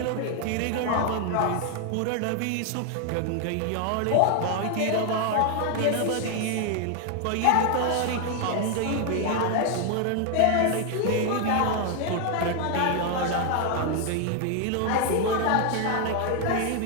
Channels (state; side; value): different; both; correlation 0.00